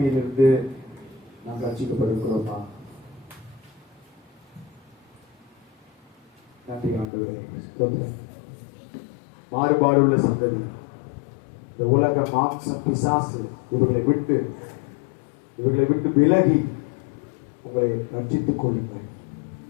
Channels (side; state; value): right; drops out; at 7.1 s